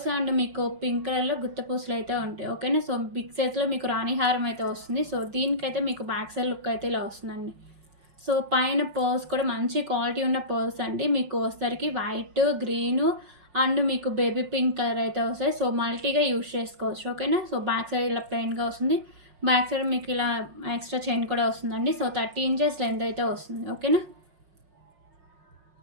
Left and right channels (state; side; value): late; left; 5.5 ms